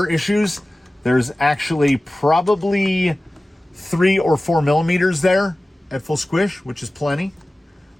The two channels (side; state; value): both; normal; correlation 0.97